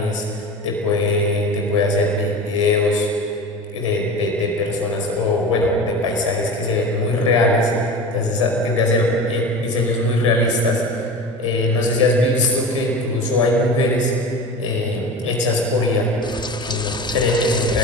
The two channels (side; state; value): both; normal; correlation 0.32